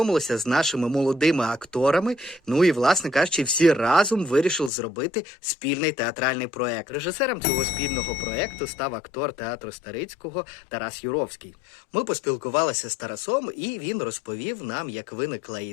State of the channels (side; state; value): right; drops out; at 4.7 s